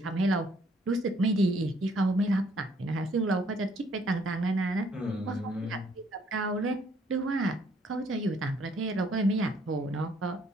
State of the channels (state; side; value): normal; both; correlation 0.65